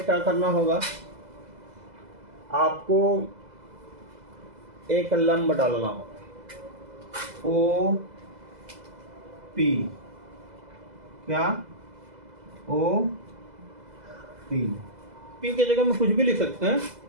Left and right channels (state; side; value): late; left; 2.0 ms